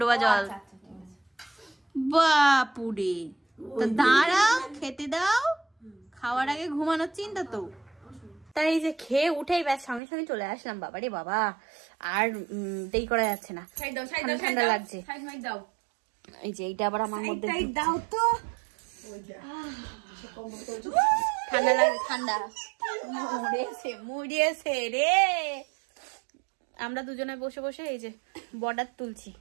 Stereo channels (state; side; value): drops out; left; at 10.0 s